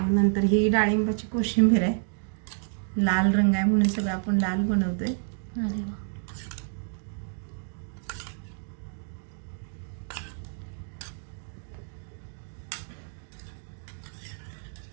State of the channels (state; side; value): silent; left; digital silence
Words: नंतर ही डाळिंबाची कोशिंबीर आहे. लाल रंग आहे म्हणून सगळं आपण लाल बनवतोय. अरे वा.